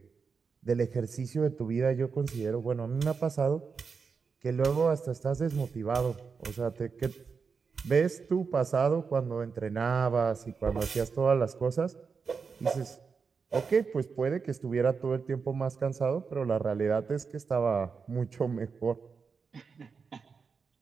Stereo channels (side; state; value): left; quieter; 5.4 dB